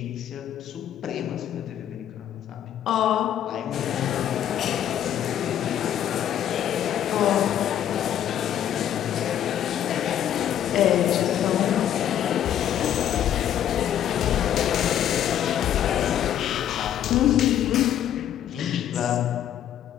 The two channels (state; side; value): quieter; right; 10.6 dB